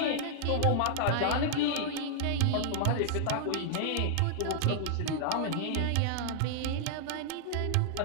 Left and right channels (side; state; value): both; different; correlation -0.01